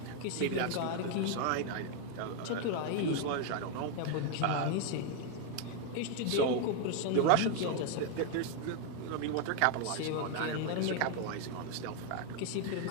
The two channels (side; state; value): both; different; correlation 0.01